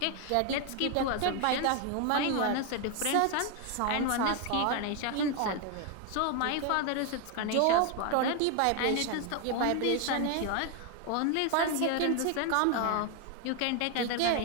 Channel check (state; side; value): different; both; correlation 0.01